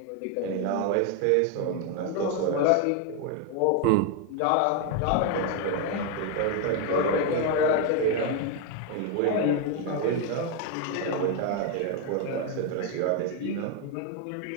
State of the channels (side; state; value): both; different; correlation 0.01